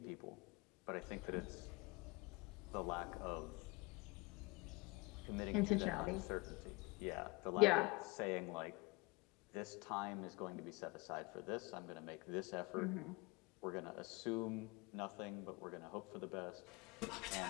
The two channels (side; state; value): right; quieter; 25.0 dB